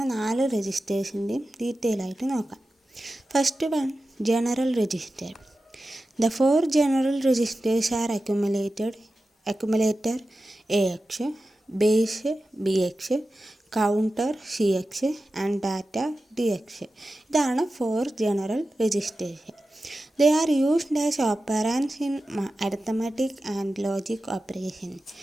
4 രജിസ്റ്റേഴ്സിൻ്റെയും ഡീറ്റെയിൽ ആയിട്ട് നോക്കാം. First one, general register. The 4 general registers are accumulator AX, base BX, counter CX and data DX. ഇതാണ് 4 general registers. They are used as operands in arithmetic and logic operations.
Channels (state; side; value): normal; both; correlation 0.93